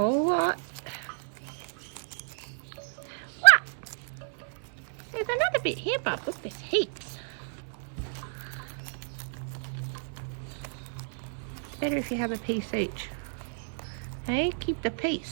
lot. What? There's another bit here, Bob. Look, there's heaps. Better if you have a piece each. Hey, keep the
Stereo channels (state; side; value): silent; left; 57 dB below the other